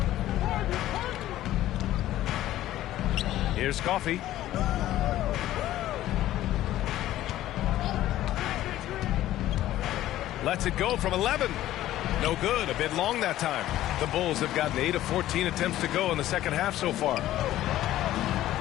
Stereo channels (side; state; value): right; quieter; 14.0 dB